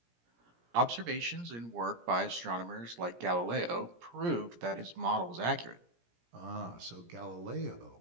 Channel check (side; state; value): left; late; 17 ms